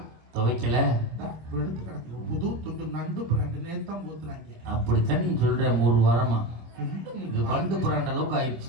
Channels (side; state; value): left; late; 26 ms